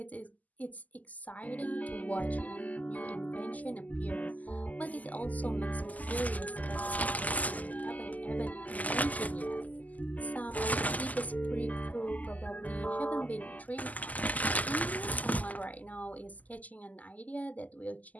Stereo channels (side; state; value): right; late; 0.078 ms